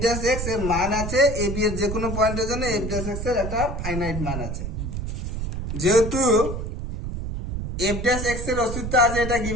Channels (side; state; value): right; noise; rumble, 4 dB below the sound